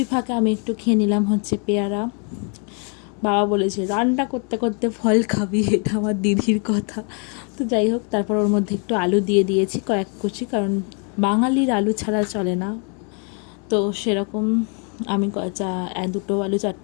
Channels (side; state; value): right; quieter; 38.2 dB